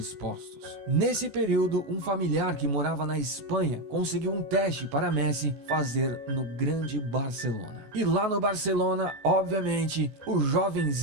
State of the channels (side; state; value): left; late; 14 ms